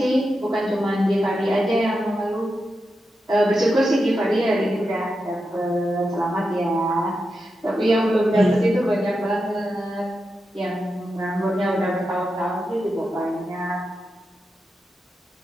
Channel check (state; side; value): normal; both; correlation 0.88